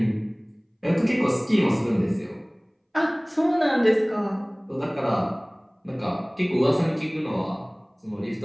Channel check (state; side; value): identical; both; correlation 1.00